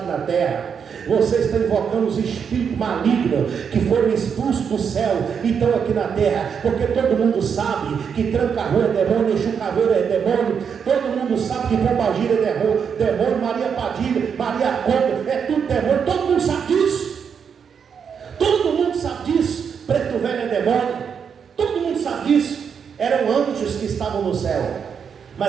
na terra. Você está invocando os espíritos malignos que foram expulsos do céu e estão aqui na terra. Porque todo mundo sabe que Tranca-Rua é demônio, Exu Caveira é demônio. Todo mundo sabe que Pombagira é demônio, Maria Padilha, Maria Conda, é tudo demônio. Todo mundo sabe disso. Todo mundo sabe disso. Preto Velho é demônio. Todo mundo sabe disso. Eram anjos que estavam no céu,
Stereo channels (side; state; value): left; quieter; 6.9 dB